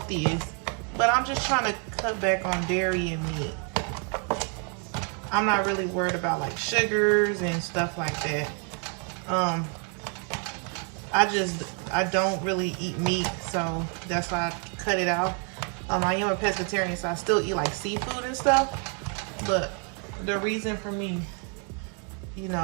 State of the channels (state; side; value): quieter; left; 37.5 dB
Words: but I'm just trying to cut back on dairy and meat. I'm not really worried about like sugars and stuff like that. I don't really eat meat, so that's why I cut it out. I am a pescatarian, so I still eat like seafood and stuff. But the reason for me, you